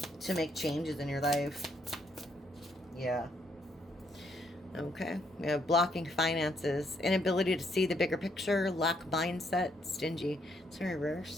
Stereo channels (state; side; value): normal; both; correlation 0.72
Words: to make changes in your life. Yeah. Okay, we have blocking finances, inability to see the bigger picture, lack mindset, stingy. It's in